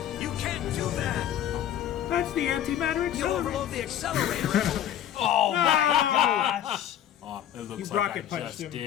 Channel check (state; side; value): quieter; right; 10.6 dB